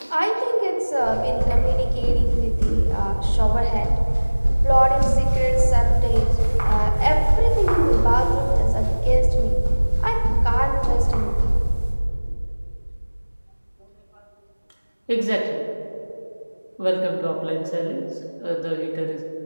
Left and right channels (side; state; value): both; inverted; correlation -1.00